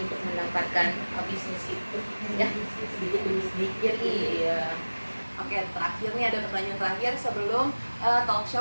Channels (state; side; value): inverted; both; correlation -1.00